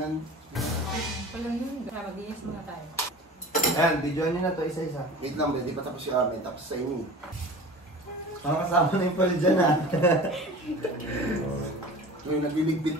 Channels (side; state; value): both; normal; correlation 0.38